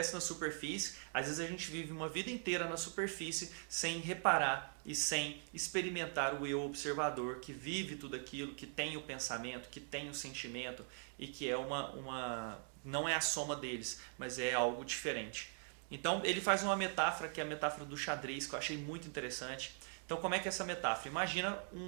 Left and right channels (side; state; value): left; silent; 50 dB below the other